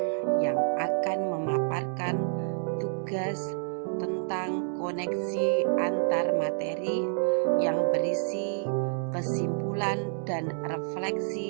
yang akan memaparkan tugas tentang koneksi antar materi yang berisi kesimpulan dan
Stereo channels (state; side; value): silent; left; digital silence